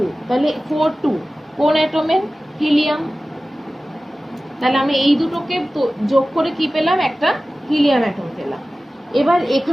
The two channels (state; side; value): normal; both; correlation 0.96